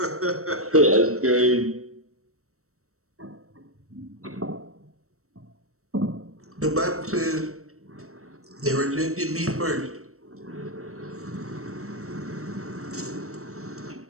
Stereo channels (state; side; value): late; left; 0.64 ms